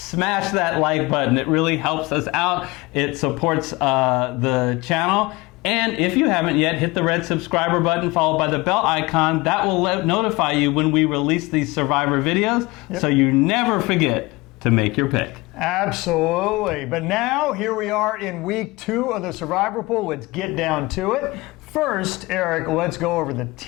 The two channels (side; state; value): right; quieter; 22.5 dB